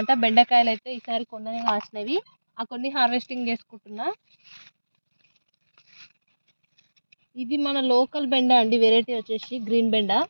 బెండకాయలైతే ఈసారి కొన్ననే కాసినవి. ఆ కొన్ని హార్వెస్టింగ్ చేసుకుంటున్నా. ఇది మన లోకల్ బెండ అండి. వెరైటీ వచ్చేసి గ్రీన్ బెండ.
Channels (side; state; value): both; inverted; correlation -1.00